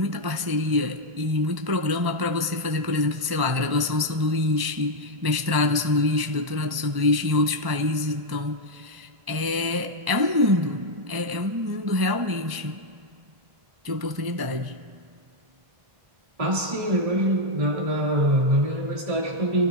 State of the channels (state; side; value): late; left; 1.1 ms